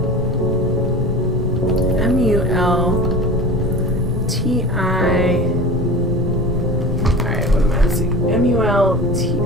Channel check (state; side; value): noise; right; rumble, 6 dB below the sound